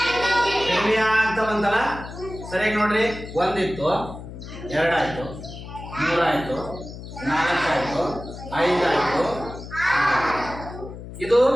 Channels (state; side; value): noise; left; hum, 12 dB below the sound